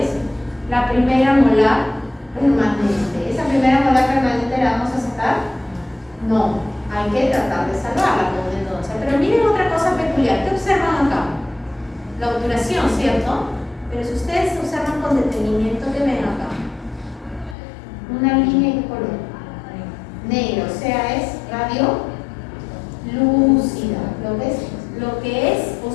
La primera molar permanente. ¿Esa primera molar permanente la vamos a sacar? No, hay que tratar de salvarla con una endodoncia. Pero miren otra cosa peculiar, ¿qué observan acá? La obturación, ¿cierto? Pero si ustedes observan con detenimiento, ¿qué ven acá? Una línea de color negro, o sea, es radio lúcida. Lo que es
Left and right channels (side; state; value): right; drops out; at 17.6 s